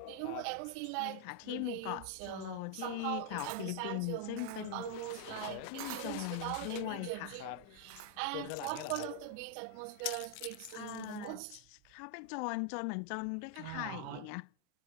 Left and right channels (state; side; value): different; both; correlation 0.00